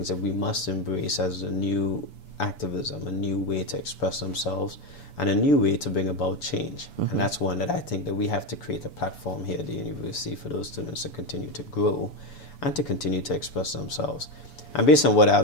that we must embrace as a new activism, a new way to express themselves, and a new way to bring about change. And that's one that I think that we have to create a platform here at the university for those students to continue to grow and to continue to express themselves. And based on what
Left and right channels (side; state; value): right; late; 6.9 ms